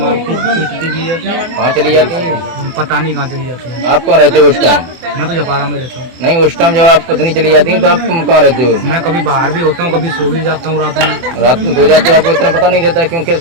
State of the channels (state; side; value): late; left; 24 ms